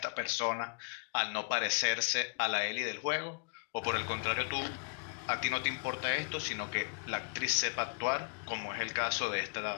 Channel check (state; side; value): quieter; right; 38.3 dB